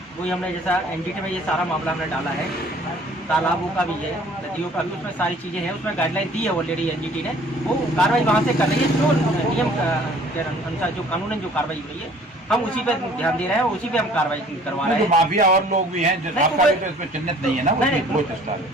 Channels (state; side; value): normal; both; correlation 0.53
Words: वही हमने जैसा एनजीटी में ये सारा मामला हमने डाला है, तालाबों का भी है, नदियों का भी, उसमें सारी चीज़ें हैं, उसमें गाइडलाइन दी है ऑलरेडी एनजीटी ने, वो कार्रवाई वहाँ से कर रही है। जो नियम के अनुसार जो कानूनन जो कार्रवाई हो रही है, हम उसी पे ध्यान दे रहे हैं, उसी पे हम कार्रवाई करवा रहे हैं। माफिया और लोग भी हैं, आपका भी तो इसमें चिन्हित नहीं है ना?